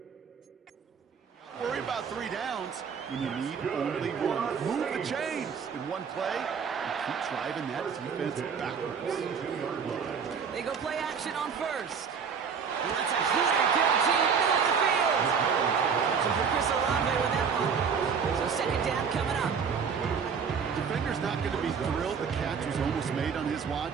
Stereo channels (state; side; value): quieter; left; 6.4 dB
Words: Worry about 3 downs when you need only one. Move the chains in one play and keep driving that defense backwards. They go play action on first. That's a heater, guaranteed, middle of the field. Searching for Chris Olave with that one. So second down coming up. Defender's not going to be thrilled the catch was almost made on his